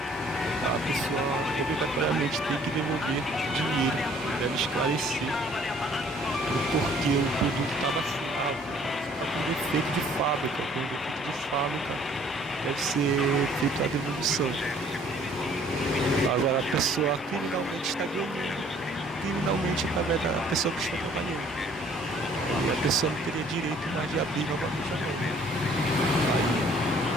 A pessoa obrigatoriamente tem que devolver dinheiro, deve esclarecer o porquê o produto estava assim, está com defeito de fábrica, deve ser feita a devolução. Agora a pessoa criminalmente está ganhando, através da pessoa que está trabalhando. E a pessoa não teria direito mais de abrir novamente a mão.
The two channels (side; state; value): both; normal; correlation 0.58